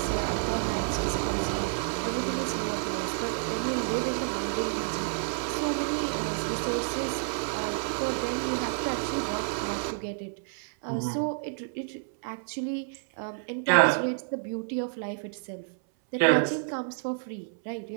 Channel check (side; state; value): left; silent; 58 dB below the other